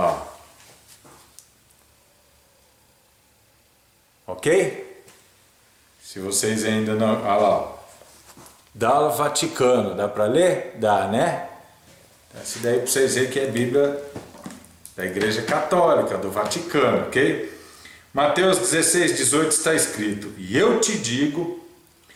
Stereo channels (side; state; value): both; identical; correlation 1.00